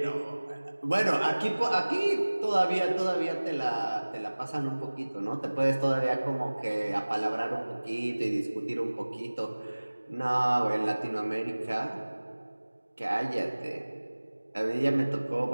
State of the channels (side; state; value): both; inverted; correlation -1.00